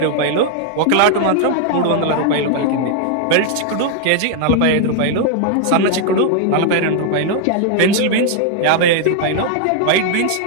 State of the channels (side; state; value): both; different; correlation 0.00